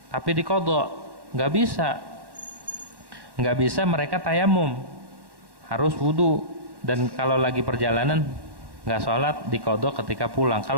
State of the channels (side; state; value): left; late; 1.1 ms